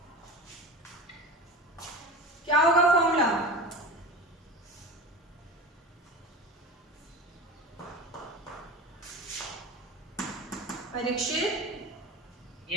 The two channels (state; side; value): normal; both; correlation 0.31